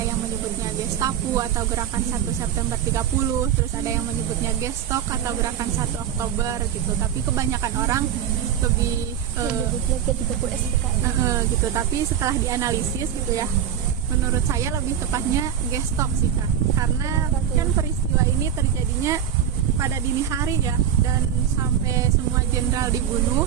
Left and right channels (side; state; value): left; quieter; 9.2 dB